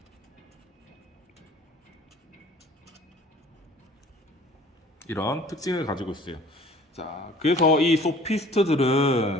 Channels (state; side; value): normal; both; correlation 0.50